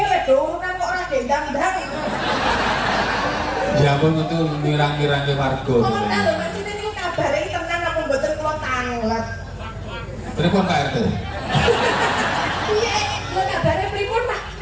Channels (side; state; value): both; identical; correlation 1.00